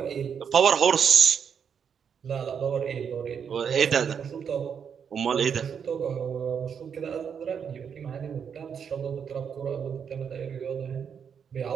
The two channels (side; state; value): left; quieter; 7.3 dB